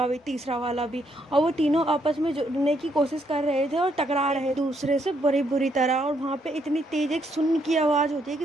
भी, तीसरा वाला भी। और वो तीनों आपस में जुड़ने की कोशिश कर रहे थे और टकरा रहे दूसरे से बड़ी बुरी तरह। और वहाँ पे इतनी तेज एक सुन की आवाज़ होती है कि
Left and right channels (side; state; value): both; normal; correlation 0.74